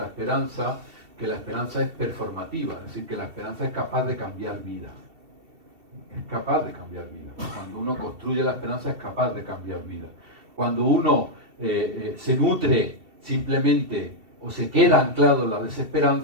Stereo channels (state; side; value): late; left; 2.7 ms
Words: Esperanza, que la esperanza es performativa, es decir, que la esperanza es capaz de cambiar vidas. Es capaz de cambiar vidas. Cuando uno construye la esperanza es capaz de cambiar vidas. Cuando uno se nutre simplemente o se queda anclado en la